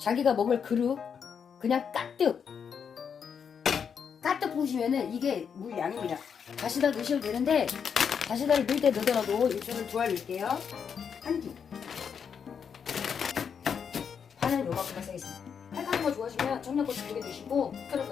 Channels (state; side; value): quieter; right; 7.0 dB